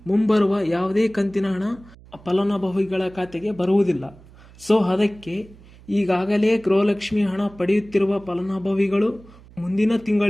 ಮುಂಬರುವ ಯಾವುದೇ ಕಂತಿನ ಹಣ ಫಲಾನುಭವಿಗಳ ಖಾತೆಗೆ ಬರುವುದಿಲ್ಲ. ಸೊ ಅದಕ್ಕೆ ಈಗಾಗಲೇ ಗೃಹಲಕ್ಷ್ಮಿ ಹಣ ಪಡೆಯುತ್ತಿರುವ ಫಲಾನುಭವಿಗಳು ಮುಂದಿನ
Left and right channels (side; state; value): right; noise; hum, 23 dB below the sound